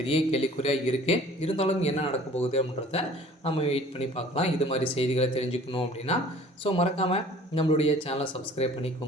கேள்விக்குறியாக இருக்குது. இருந்தாலும் என்ன நடக்க போகுது அப்படின்றத நம்ம வெயிட் பண்ணி பார்க்கலாம். இது மாதிரி செய்திகளை தெரிஞ்சுக்கணும் அப்படின்னா மறக்காமல் நம்மளுடைய சேனலை சப்ஸ்கிரைப்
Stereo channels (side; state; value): both; normal; correlation 0.50